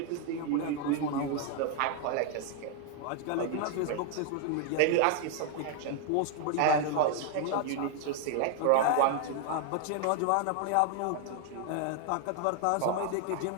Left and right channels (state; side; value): different; both; correlation 0.00